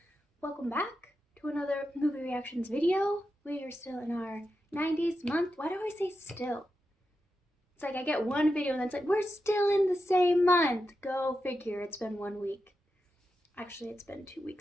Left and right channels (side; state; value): both; normal; correlation 0.89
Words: Welcome back to another movie reactions video. We are still in our 90s month. Why do I say still? It's like I get one video and then it's like, we're still in the same month. Go figure, it's been 1 week. Actually, it's been 2